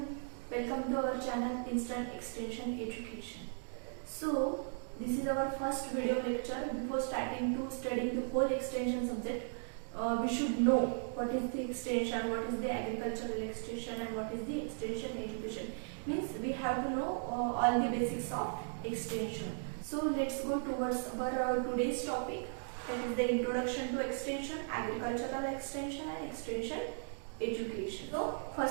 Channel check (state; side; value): silent; left; digital silence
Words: welcome to our channel Instant Extension Education. So this is our first video lecture. Before starting to studying the whole extension subject, we should know what is the extension, what is the agricultural extension and what is the extension education. Means we have to know all the basics of extension. So let's go towards our today's topic, that is the introduction to extension, agricultural extension and extension education. So